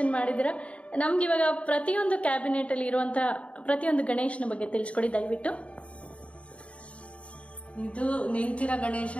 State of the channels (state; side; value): late; right; 0.063 ms